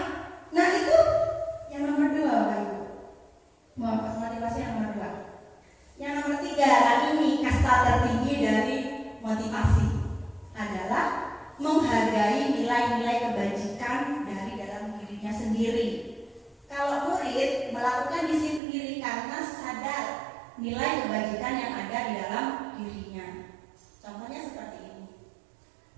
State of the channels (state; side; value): drops out; left; at 18.6 s